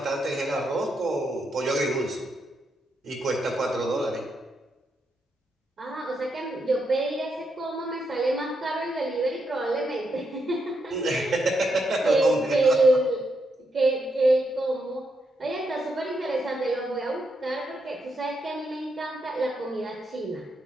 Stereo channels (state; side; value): normal; both; correlation 0.81